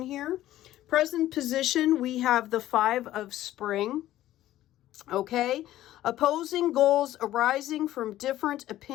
here. Present position, we have the 5 of Spring, okay. Opposing goals arising from different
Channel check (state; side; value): quieter; right; 14.1 dB